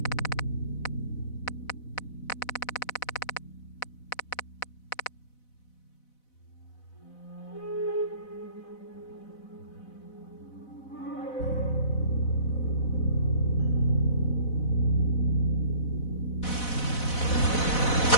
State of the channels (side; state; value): right; late; 4.0 ms